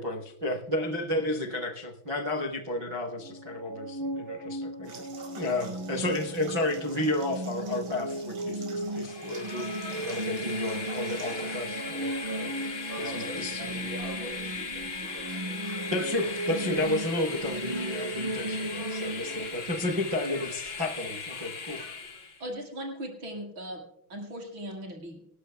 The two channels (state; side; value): late; left; 6.0 ms